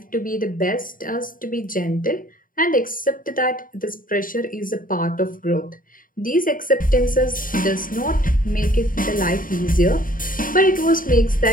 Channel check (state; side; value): late; right; 0.40 ms